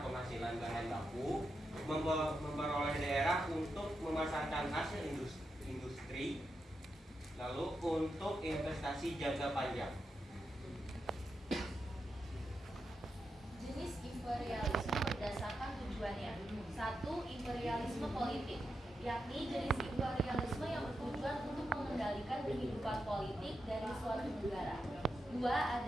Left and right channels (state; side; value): normal; both; correlation 0.86